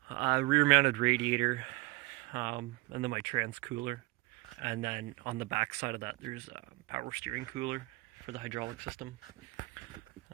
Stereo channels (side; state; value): left; quieter; 23.2 dB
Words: a rear mounted radiator, and then my trans cooler, and then on the back side of that there's a power steering cooler for the hydraulic system.